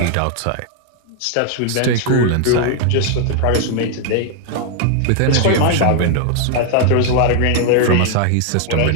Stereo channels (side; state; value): both; different; correlation 0.00